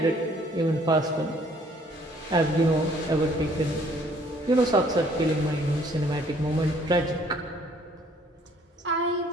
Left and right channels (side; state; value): both; normal; correlation 0.60